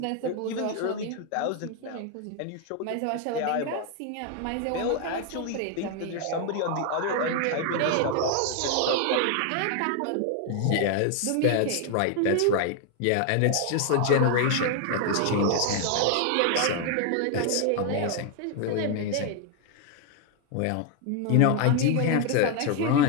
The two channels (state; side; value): different; both; correlation 0.01